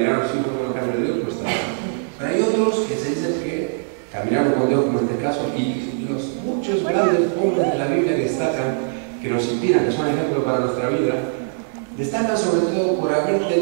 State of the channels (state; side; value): silent; left; digital silence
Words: a sus hijos por el camino de Dios, no está mal. Pero hay otros que se dicen que caminaron con Dios, como en este caso, y los muchos grandes hombres de la Biblia que destacan, que nos inspiran, que son ejemplos para nuestra vida, destacan sobre todo por haber